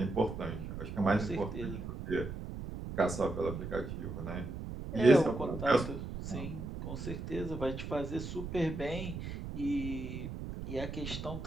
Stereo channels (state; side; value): noise; right; rumble, 7 dB below the sound